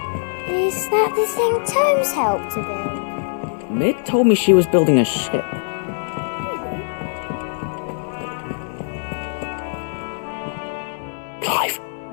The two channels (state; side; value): silent; right; 64 dB below the other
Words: Is that the thing Tomes helped to build? Mid told me she was building a ship. Clive,